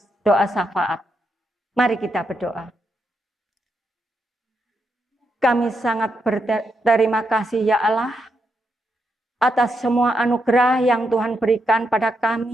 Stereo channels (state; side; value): normal; both; correlation 0.82